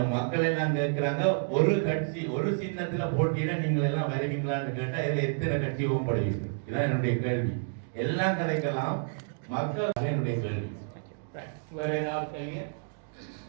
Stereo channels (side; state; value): left; silent; digital silence